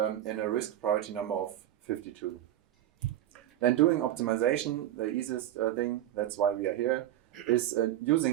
a risk priority number of 52. Then doing optimization, the easiest thing, that's why we are here, is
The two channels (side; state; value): left; quieter; 12.7 dB